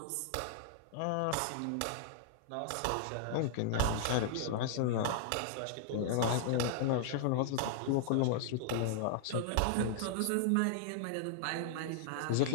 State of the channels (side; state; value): both; different; correlation -0.01